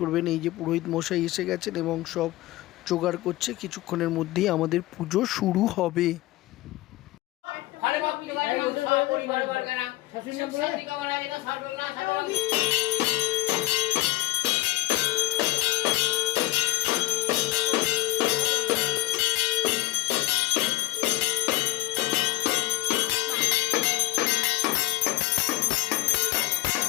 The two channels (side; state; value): right; quieter; 18.1 dB